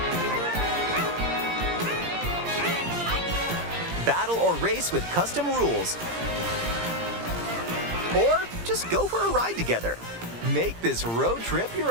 Battle or race with custom rules. Or just go for a ride together. Make this road trip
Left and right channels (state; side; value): late; left; 17 ms